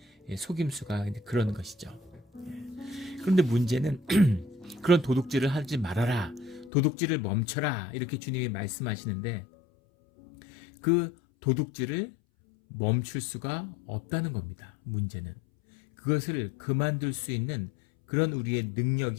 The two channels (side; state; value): right; drops out; at 6.7 s